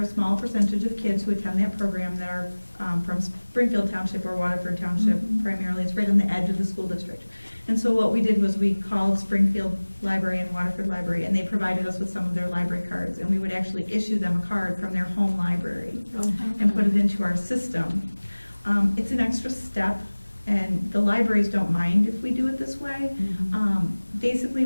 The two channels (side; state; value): both; inverted; correlation -1.00